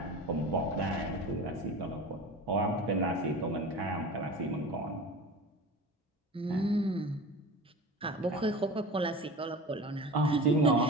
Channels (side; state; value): both; normal; correlation 0.34